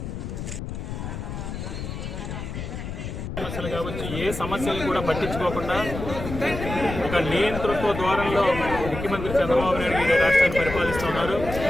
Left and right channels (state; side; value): noise; left; rumble, 7 dB below the sound